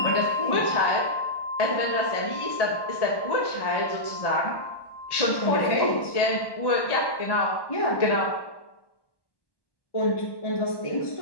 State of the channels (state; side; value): late; right; 1.1 ms